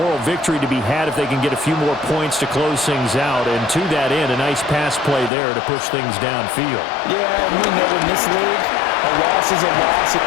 victory to be had if they can get a few more points to close things out. And to that end, a nice pass play there to push things downfield. Yeah, and we know in this league, a loss is a loss. Oh,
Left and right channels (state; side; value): drops out; right; at 5.3 s